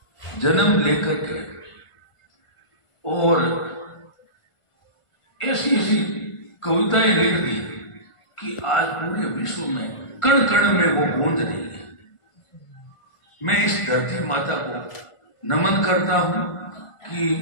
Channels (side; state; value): right; late; 1.5 ms